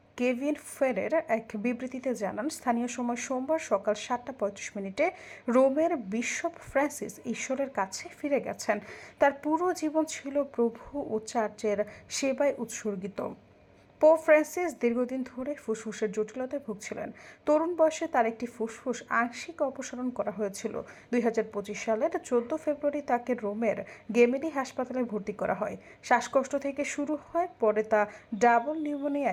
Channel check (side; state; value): both; identical; correlation 1.00